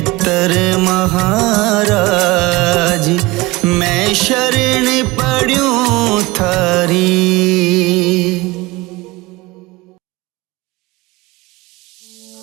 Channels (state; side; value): quieter; left; 22.0 dB